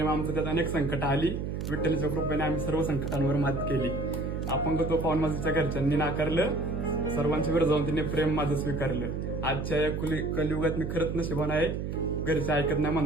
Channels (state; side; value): noise; right; hum, 3 dB below the sound